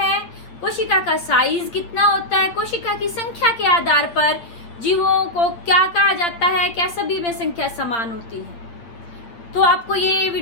कोशिका का साइज कितना होता है, कोशिका की संख्या के आधार पर जीवों को क्या कहा जाता है, क्या सभी में संख्या समान होती है। तो आपको ये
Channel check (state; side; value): late; right; 8.7 ms